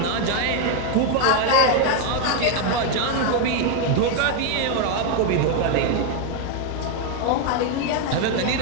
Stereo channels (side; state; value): both; different; correlation 0.01